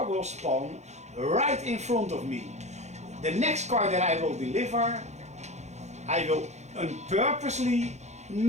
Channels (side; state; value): left; late; 0.33 ms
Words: will spawn right in front of me. The next car that I will deliver, I will purposely